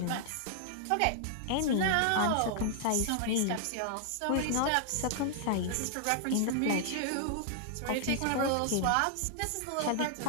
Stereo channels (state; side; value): different; both; correlation -0.01